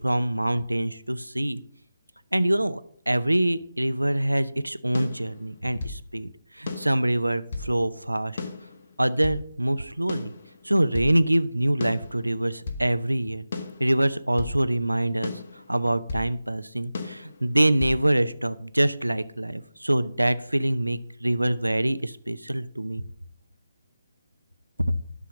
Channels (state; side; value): inverted; both; correlation -0.97